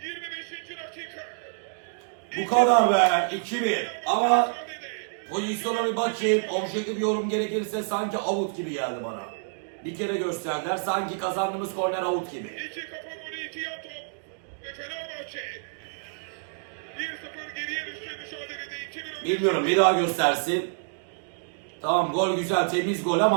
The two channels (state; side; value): silent; left; digital silence